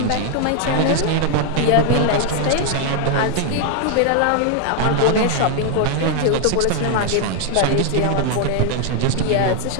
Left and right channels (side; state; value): both; different; correlation 0.00